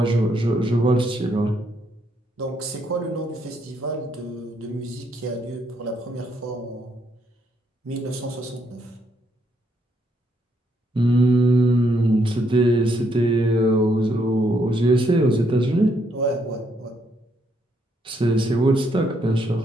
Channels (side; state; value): both; normal; correlation 0.74